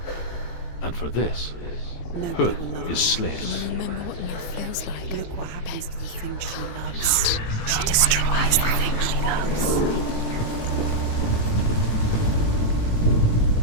And for this, Huth is slain. Remember what love feels like. Look what happens to the thing she loves. She destroys the thing she loves.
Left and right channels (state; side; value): late; right; 18 ms